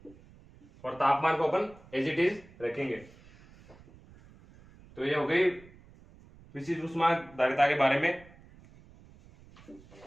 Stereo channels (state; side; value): noise; right; rumble, 24 dB below the sound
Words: और तापमान को अपन एज इट इज रखेंगे। तो ये हो गई विशिष्ट ऊष्मा धारिता के बारे में।